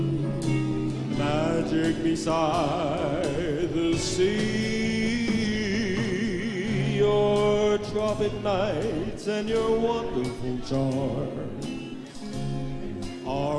magic beside the sea. Your tropic nights and your wonderful charms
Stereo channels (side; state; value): both; identical; correlation 1.00